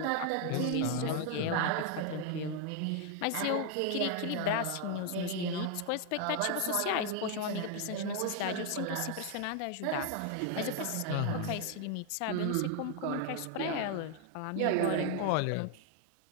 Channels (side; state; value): both; different; correlation 0.01